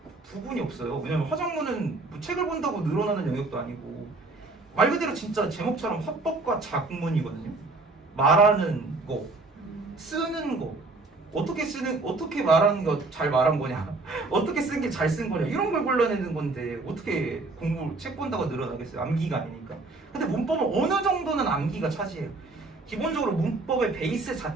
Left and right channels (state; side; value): quieter; left; 3.4 dB